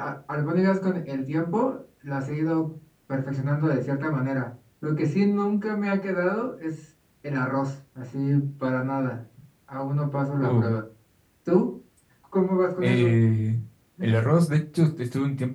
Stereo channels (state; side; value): identical; both; correlation 1.00